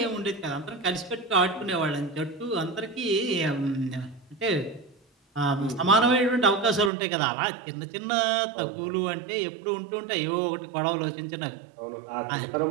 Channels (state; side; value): drops out; left; at 6.9 s